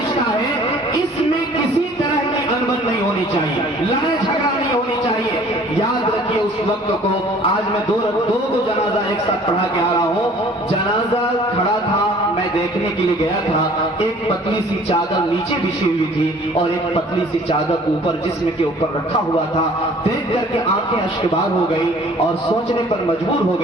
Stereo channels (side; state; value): both; normal; correlation 0.52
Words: ہے، اس میں کسی طرح کی انبن نہیں ہونی چاہیے، لڑائی جھگڑا نہیں ہونی چاہیے۔ یاد رکھیے اس وقت کو آج میں دو کو جنازہ ایک ساتھ پڑھا کے آ رہا ہوں. جنازہ کھڑا تھا, میں دیکھنے کے لیے گیا تھا. ایک پتلی سی چادر نیچے بچھی ہوئی تھی اور ایک پتلی سی چادر اوپر جسم کے اوپر رکھا ہوا تھا. دیکھ کر کے آنکھیں اشکبار ہو گئی اور سوچنے پر مجبور ہو